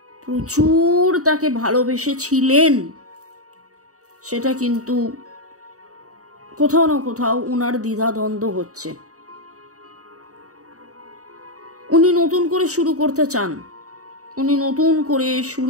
প্রচুর তাকে ভালোবেসেছিলেন সেটা কিন্তু কোথাও না কোথাও ওনার দ্বিধাদ্বন্দ্ব হচ্ছে। উনি নতুন করে শুরু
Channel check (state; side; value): late; left; 0.66 ms